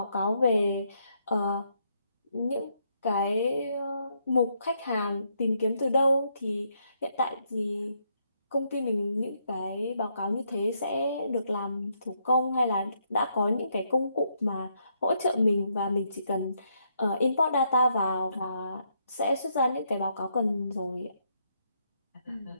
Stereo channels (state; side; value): inverted; both; correlation -0.75